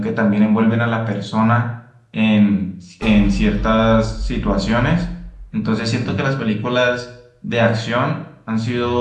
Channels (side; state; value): both; identical; correlation 1.00